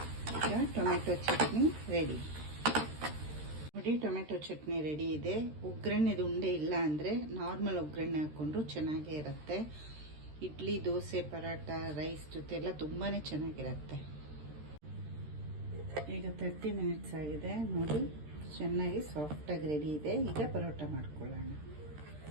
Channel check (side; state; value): left; late; 13 ms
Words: ಈಗ ಟೊಮೆಟೊ ಚಟ್ನಿ ರೆಡಿ. ನೋಡಿ, ಟೊಮೆಟೊ ಚಟ್ನಿ ರೆಡಿ ಇದೆ. ಒಗ್ಗರಣೆದು ಉಂಡೆ ಇಲ್ಲ ಅಂದರೆ ನಾರ್ಮಲ್ ಒಗ್ಗರಣೆ ಹಾಕ್ಕೊಂಡ್ರು ಚೆನ್ನಾಗೇ ಇರುತ್ತೆ. ಇಡ್ಲಿ, ದೋಸೆ, ಪರಾಟ, ರೈಸ್ ಜೊತೆ ಎಲ್ಲ ತುಂಬಾ ಚೆನ್ನಾಗಿರುತ್ತೆ. ಈಗ 30 ಮಿನಿಟ್ಸ್ ಆಗಿದೆ. ನೋಡಿ, ಚೆನ್ನಾಗಿ ಸಾಫ್ಟಾಗಿ ರೆಡಿ ಇದೆ. ಈಗ ಪರೋಟ ಮಾಡ್ಕೊಳ್ಳೋಣ.